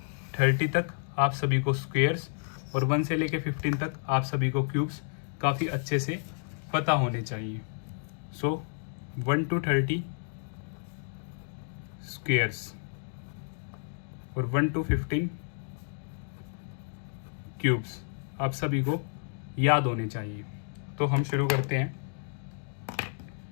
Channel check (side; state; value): right; silent; digital silence